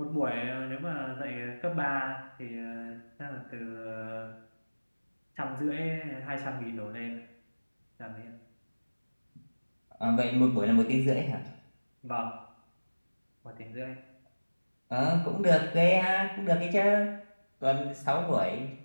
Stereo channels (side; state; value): both; inverted; correlation -1.00